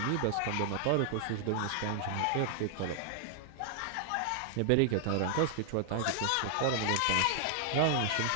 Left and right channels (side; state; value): both; different; correlation 0.00